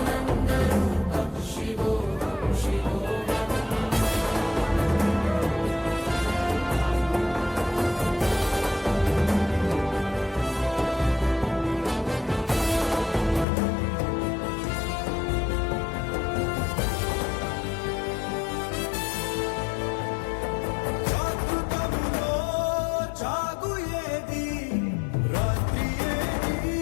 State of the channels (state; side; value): drops out; right; at 13.5 s